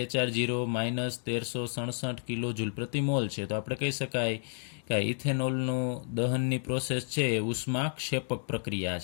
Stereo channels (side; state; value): right; silent; 56 dB below the other